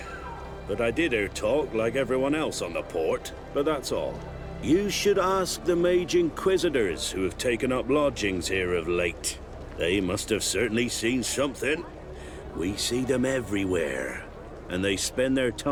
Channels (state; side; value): identical; both; correlation 1.00